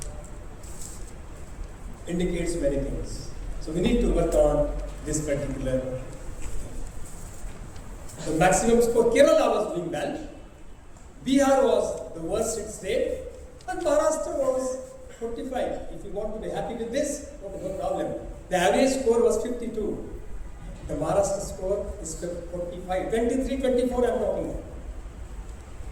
Indicates many things. So we need to work on this particular thing. The maximum score, Kerala was doing well, Bihar was the worst state, and Maharashtra was 45. If you want to be happy with this, no problem. The average score was 52. The Maharashtra score is 45. 23, 24 I am talking about.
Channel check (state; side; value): identical; both; correlation 1.00